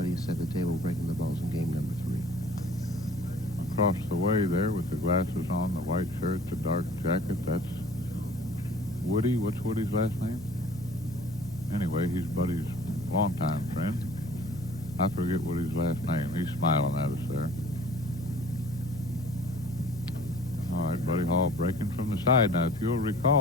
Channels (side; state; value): right; noise; hum, 14 dB below the sound